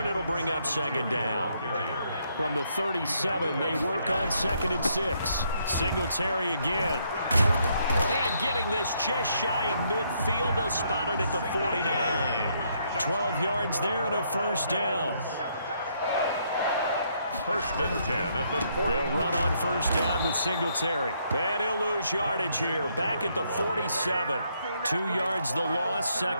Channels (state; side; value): inverted; both; correlation -0.72